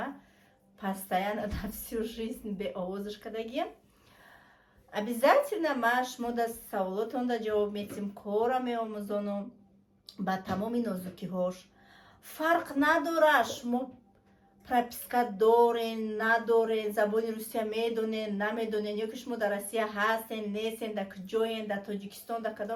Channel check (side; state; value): both; identical; correlation 1.00